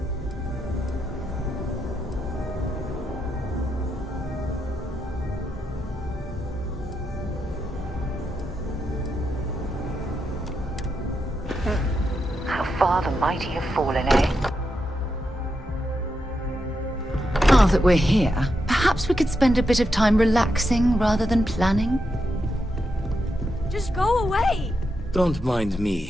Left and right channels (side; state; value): both; normal; correlation 0.84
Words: How far the mighty have fallen, eh? Now that we're here, perhaps we could spend a bit of time relaxing rather than planning? Just go away! Don't mind